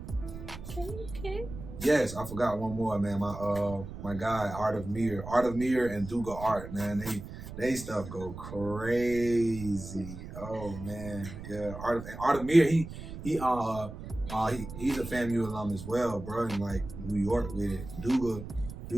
Okay. Yes, I forgot one more, man. My guy, Art of Mir and Duga Art, man. They stuff go crazy. Oh man, yeah. Art of Mir, he's a FAMU alum as well, bro. In, like, New York with it. Duga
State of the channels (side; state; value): right; noise; rumble, 11 dB below the sound